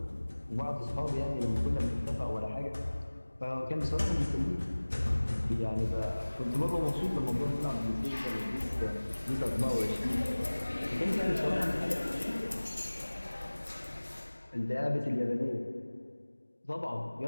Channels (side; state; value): both; inverted; correlation -1.00